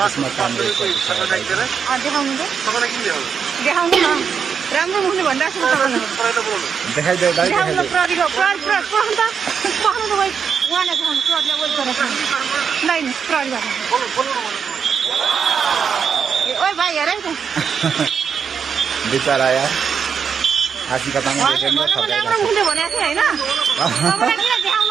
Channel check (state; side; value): quieter; left; 6.7 dB